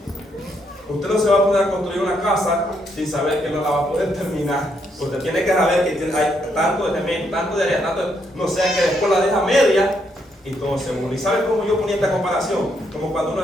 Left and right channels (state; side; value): normal; both; correlation 0.75